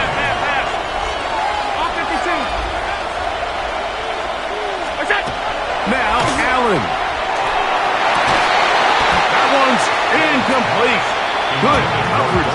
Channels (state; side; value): identical; both; correlation 1.00